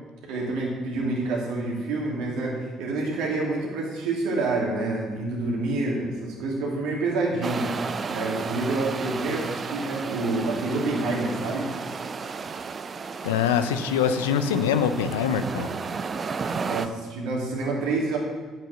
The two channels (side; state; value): both; normal; correlation 0.45